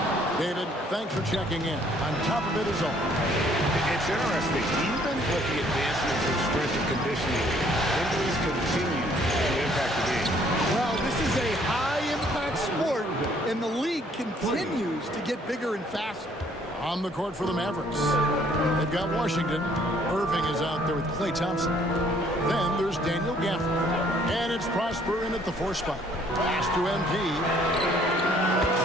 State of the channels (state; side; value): normal; both; correlation 0.62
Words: David, thanks for checking in. On top of it is all. It's interesting. Even with the advancements in strength and conditioning, injuries continue to impact the game. Well, this is a high-impact sport, and the league continues to get bigger and faster. On the court for the Mavericks. They've got Washington. Irving is out there with Klay Thompson. Then there's Daniel Gafford. And it's Prosper in at the 4 spot. Pass to MP.